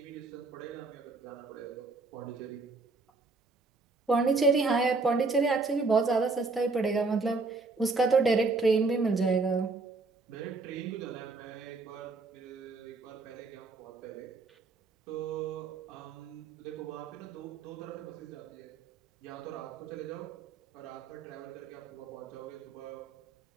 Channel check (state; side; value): quieter; left; 3.9 dB